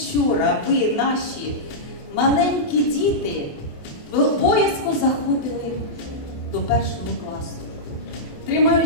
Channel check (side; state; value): right; late; 27 ms